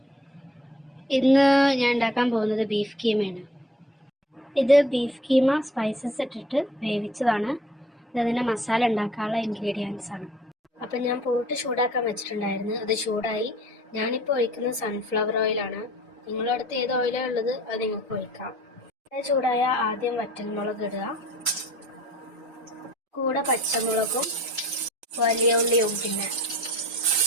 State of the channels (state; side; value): normal; both; correlation 0.51